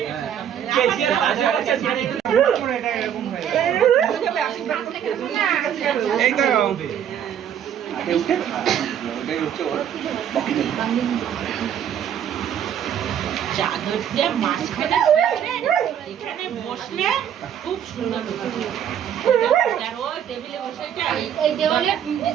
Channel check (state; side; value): quieter; left; 9.4 dB